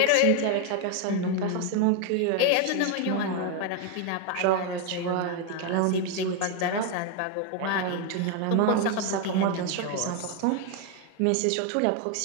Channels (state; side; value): different; both; correlation 0.01